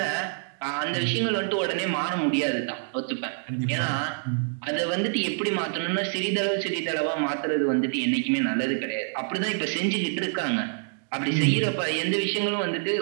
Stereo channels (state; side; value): silent; left; 61 dB below the other